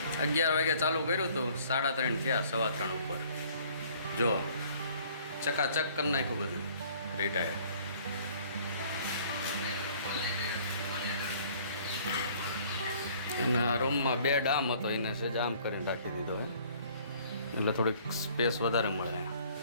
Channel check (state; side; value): inverted; both; correlation -0.56